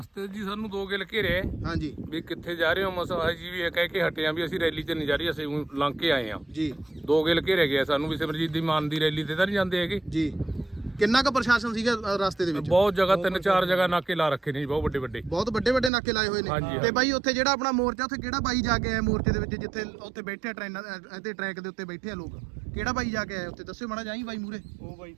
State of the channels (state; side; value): drops out; left; at 15.9 s